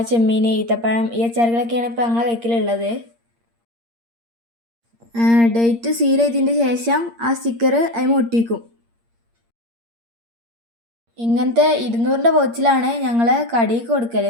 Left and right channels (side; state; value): left; late; 8.6 ms